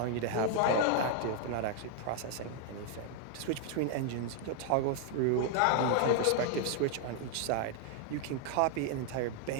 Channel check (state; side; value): different; both; correlation 0.00